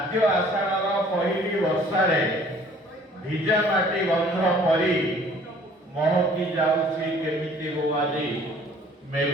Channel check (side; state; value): both; normal; correlation 0.54